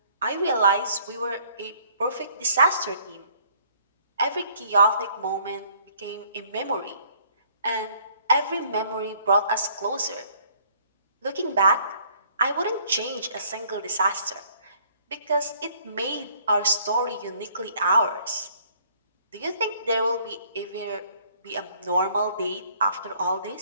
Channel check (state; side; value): inverted; both; correlation -0.61